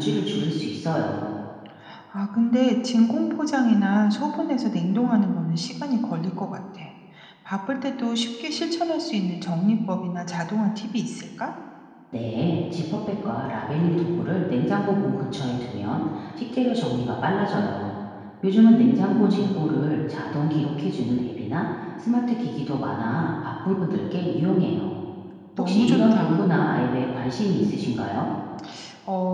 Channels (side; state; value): both; identical; correlation 1.00